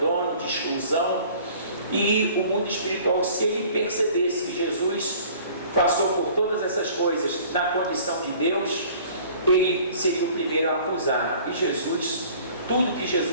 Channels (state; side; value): inverted; both; correlation -0.50